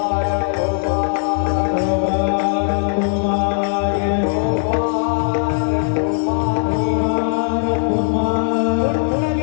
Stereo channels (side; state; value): right; silent; 67 dB below the other